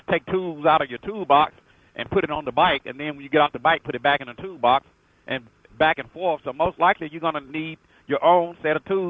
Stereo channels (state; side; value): identical; both; correlation 1.00